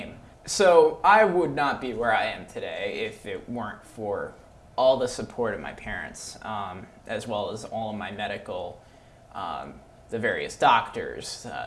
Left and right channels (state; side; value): identical; both; correlation 1.00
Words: So I would not be where I am today if it weren't for all the support of my parents, as well as all of my medical, the various doctors,